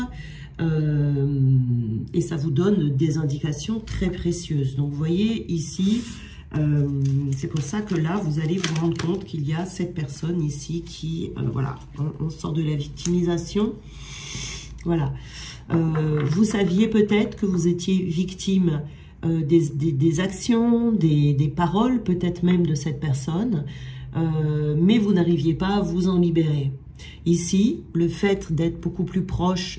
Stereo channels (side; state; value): both; identical; correlation 1.00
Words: Et ça vous donne des indications très précieuses. Donc, vous voyez ici, c'est pour ça que là, vous allez vous rendre compte qu'il y a cette personne ici qui, voilà, on sort de la victimisation. Voilà. Vous saviez peut-être que vous étiez victime des actions, des paroles, peut-être même de cette personne, mais vous n'arriviez pas à vous en libérer. Ici, le fait d'être beaucoup plus proche